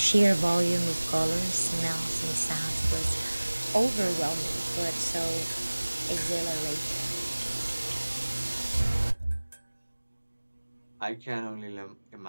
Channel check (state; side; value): inverted; both; correlation -1.00